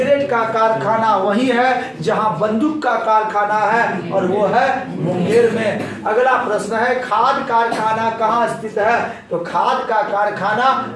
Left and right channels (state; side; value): identical; both; correlation 1.00